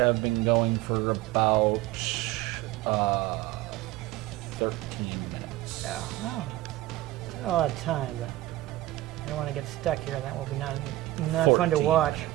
been going for about 13 minutes. Yeah, well, it's not a lot of time, but I don't want to get stuck here. That will be not fun to 14 watch.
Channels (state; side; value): quieter; left; 16.5 dB